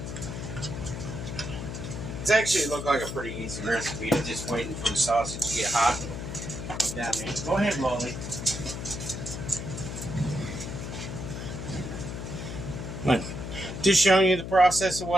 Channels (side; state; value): left; noise; hum, 7 dB below the sound